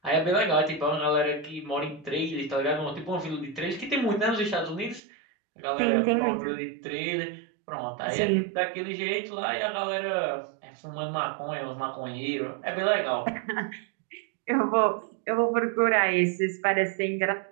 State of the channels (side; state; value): left; drops out; at 5.0 s